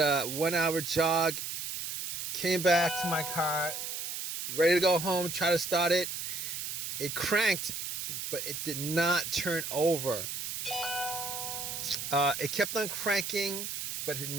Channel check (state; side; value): noise; right; hiss, 5 dB below the sound